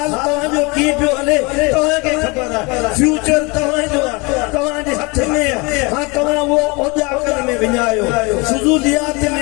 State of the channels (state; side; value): quieter; right; 27.6 dB